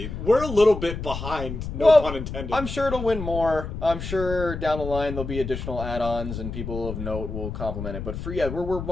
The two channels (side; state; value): left; noise; rumble, 7 dB below the sound